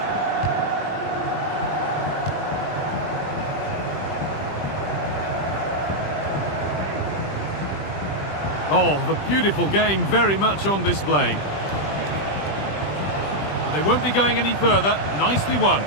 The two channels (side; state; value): right; late; 20 ms